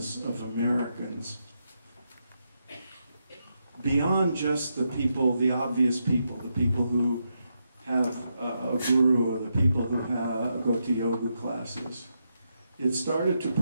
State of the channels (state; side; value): inverted; both; correlation -0.83